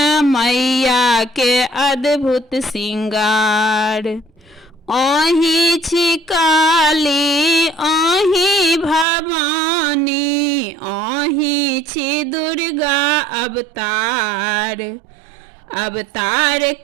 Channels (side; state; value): left; drops out; at 9.1 s